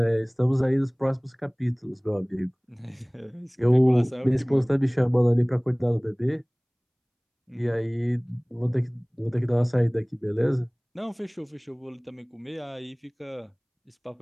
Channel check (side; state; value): both; identical; correlation 1.00